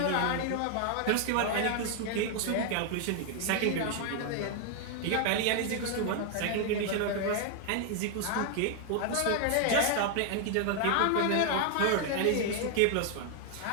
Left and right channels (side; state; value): both; different; correlation 0.00